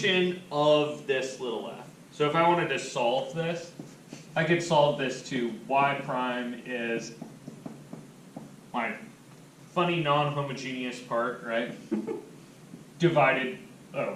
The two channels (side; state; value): both; identical; correlation 1.00